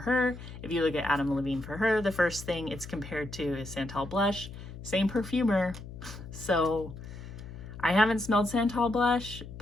If you look at Levine For Her, the first thing it's compared to is Santal Blush. Same perfumer. So I haven't smelled Santal Blush,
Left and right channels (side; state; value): left; noise; hum, 13 dB below the sound